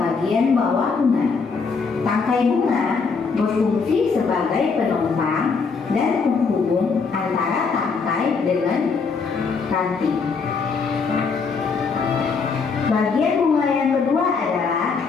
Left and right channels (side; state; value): right; quieter; 5.0 dB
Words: bawah bunga. Tangkai bunga berfungsi sebagai penopang dan penghubung antara tangkai dengan ranting. Bagian bunga yang kedua adalah